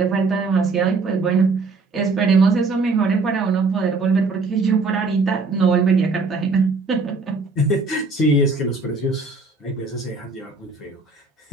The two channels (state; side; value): quieter; left; 3.9 dB